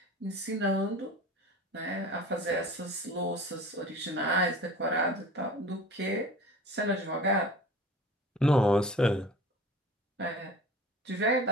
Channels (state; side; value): normal; both; correlation 0.39